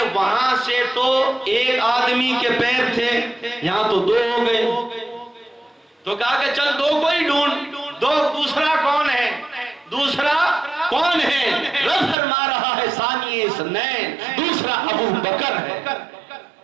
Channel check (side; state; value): left; drops out; at 12.2 s